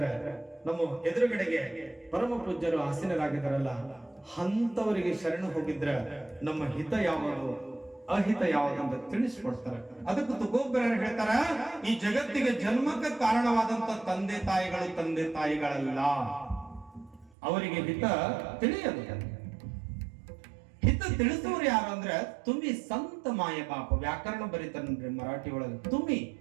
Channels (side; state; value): left; drops out; at 17.3 s